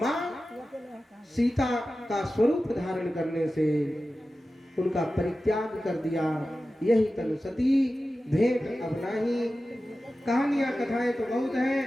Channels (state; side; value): normal; both; correlation 0.94